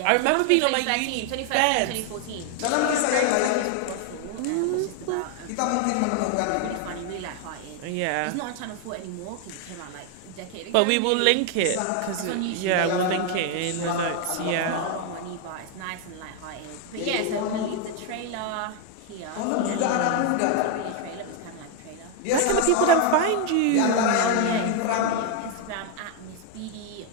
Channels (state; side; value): different; both; correlation 0.01